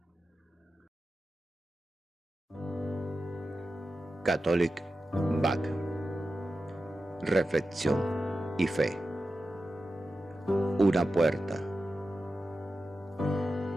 Catholic Back. Reflexión y fe. Una puerta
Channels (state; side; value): normal; both; correlation 0.92